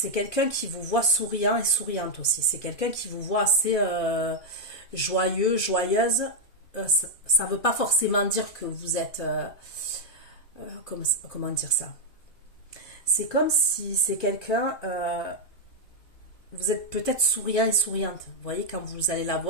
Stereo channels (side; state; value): right; late; 2.5 ms